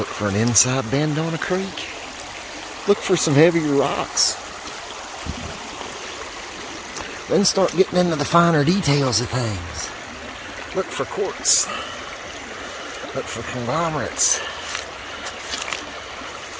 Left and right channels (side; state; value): both; identical; correlation 1.00